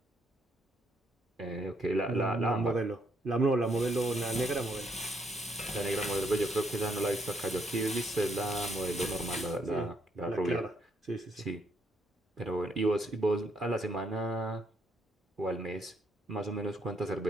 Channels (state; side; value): normal; both; correlation 0.73